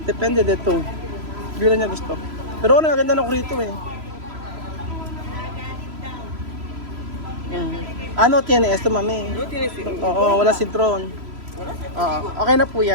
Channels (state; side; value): late; left; 3.0 ms